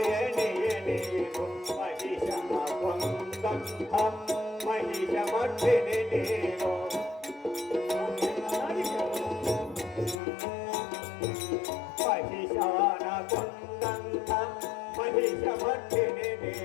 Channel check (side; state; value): right; drops out; at 10.2 s